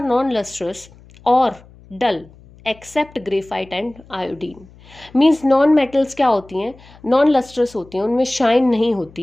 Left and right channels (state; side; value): noise; left; hum, 24 dB below the sound